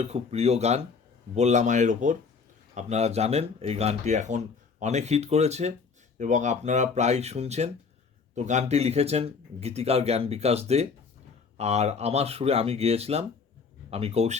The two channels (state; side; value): quieter; right; 5.2 dB